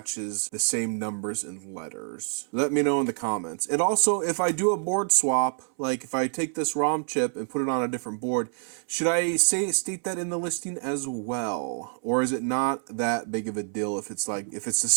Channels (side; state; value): left; silent; 60 dB below the other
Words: the same numbers and letters? Let me know in the comments. And also, if I do a board swap, like if I take this ROM chip and put it on a different board, should I state that in the listing as well? Or is it not that big of a deal if it's the